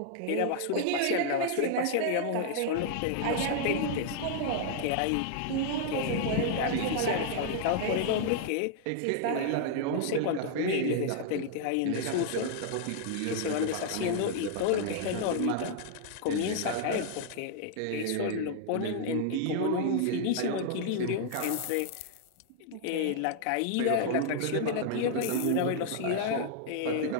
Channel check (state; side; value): different; both; correlation -0.01